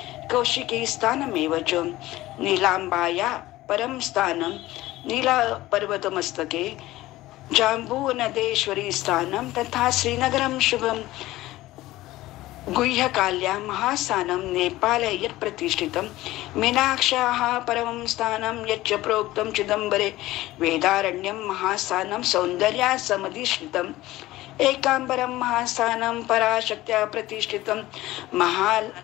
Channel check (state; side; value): quieter; right; 17.0 dB